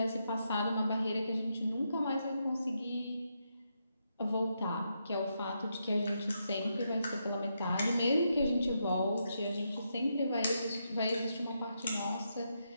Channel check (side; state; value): both; inverted; correlation -0.82